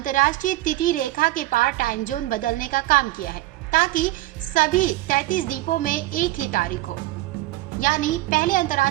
तिथि रेखा के पार टाइम जोन बदलने का काम किया है, ताकि सभी 33 द्वीपों में एक ही तारीख हो। यानी पहले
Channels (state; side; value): quieter; left; 17.6 dB